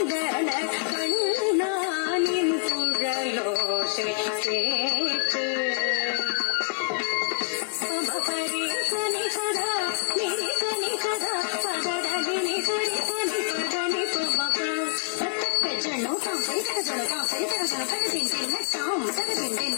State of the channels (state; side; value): silent; right; digital silence